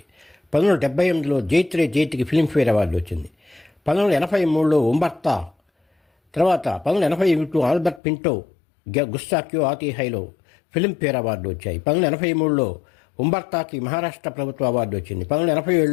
1978లో జైత్రే జైత్కి ఫిల్మ్ఫేర్ అవార్డు వచ్చింది. 1983లో ఉంబర్తా, తర్వాత 1981 ఆల్బర్ట్ పింటో, గుస్తా క్యూ ఆతీ హైలో ఫిల్మ్ఫేర్ అవార్డు వచ్చాయి. 1983లో ఉంబర్తాకి మహారాష్ట్ర ప్రభుత్వ అవార్డు వచ్చింది.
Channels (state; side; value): drops out; right; at 8.0 s